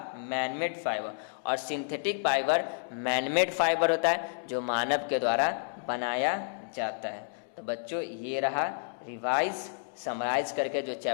manmade fibre. और सिंथेटिक फाइबर मैनमेड फाइबर होता है जो मानव के द्वारा बनाया जाता है। तो बच्चों ये रहा रिवाइज, समराइज करके जो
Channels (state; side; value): silent; right; digital silence